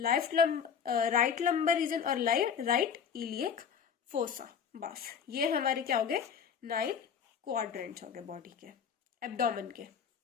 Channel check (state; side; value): quieter; right; 7.2 dB